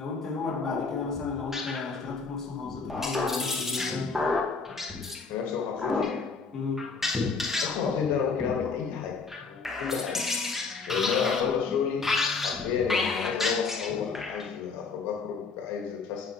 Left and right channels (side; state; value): right; quieter; 4.7 dB